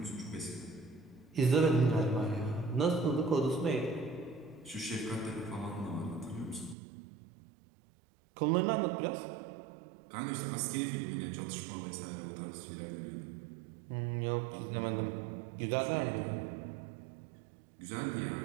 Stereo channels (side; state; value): left; drops out; at 6.8 s